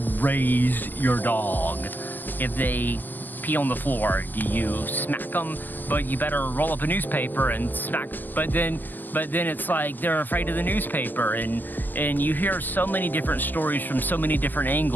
raise your dog. If they pee on the floor, do you smack them? But you better roll up a newspaper and smack. But then it's like they're afraid of the newspaper, and you hear so many different stories from so many different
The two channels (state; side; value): late; right; 0.087 ms